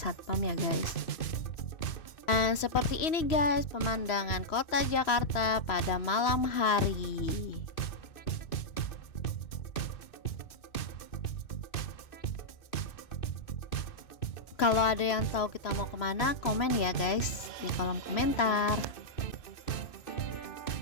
ya guys. Dan seperti ini guys pemandangan kota Jakarta pada malam hari. Kalau ada yang tahu kita mau kemana, komen ya guys di kolom komentar.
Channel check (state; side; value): late; right; 3.0 ms